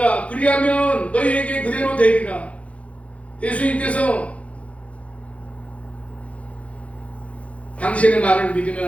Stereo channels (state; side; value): late; right; 0.064 ms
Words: 그리하면 너희에게 그대로 되리라. 예수님께서 당신의 말을